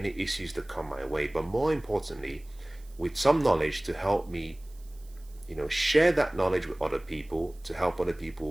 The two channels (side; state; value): right; noise; hiss, 28 dB below the sound